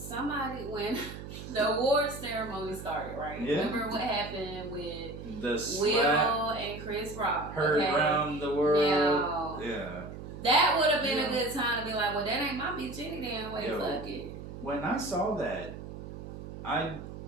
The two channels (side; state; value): right; noise; hum, 11 dB below the sound